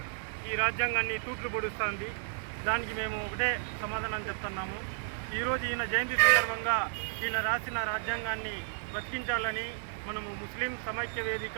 ఈ రాజ్యాంగాన్ని తూట్లు పొడుస్తుంది। దానికి మేము ఒకటే సమాధానం చెప్తున్నాము। ఈరోజు ఈయన జయంతి సందర్భంగా ఈయన రాసిన రాజ్యాంగాన్ని బతికించాలని మనము ముస్లిం సమైక్య వేదిక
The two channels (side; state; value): left; silent; 56 dB below the other